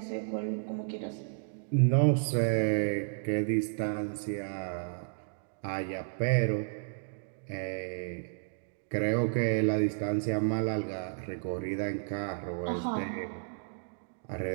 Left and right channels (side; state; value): left; silent; digital silence